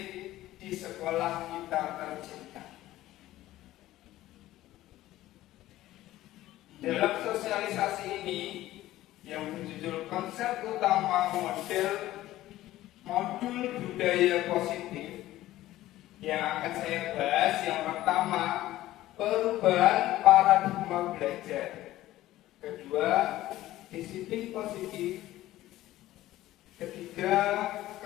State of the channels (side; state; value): right; quieter; 15.3 dB